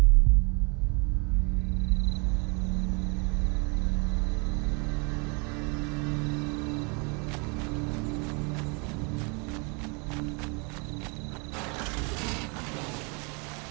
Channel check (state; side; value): quieter; left; 32.4 dB